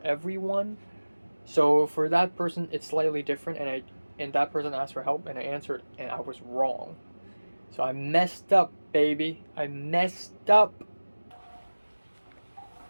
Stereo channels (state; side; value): inverted; both; correlation -1.00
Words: everyone. So for that person, it's slightly different, and that person asked for help, and I answered, and I was wrong. So I messed up, baby. I messed up.